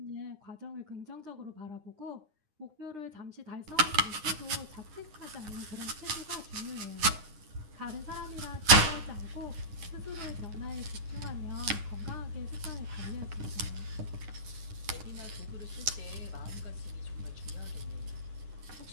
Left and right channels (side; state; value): left; late; 9.8 ms